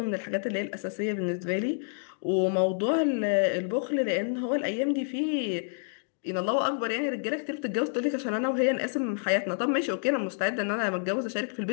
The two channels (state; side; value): silent; right; digital silence